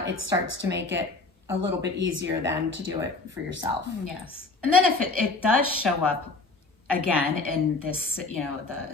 it starts to make it a little bit easier then to do it for yourself. Yes. And then if it does show up again in this,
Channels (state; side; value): quieter; right; 3.6 dB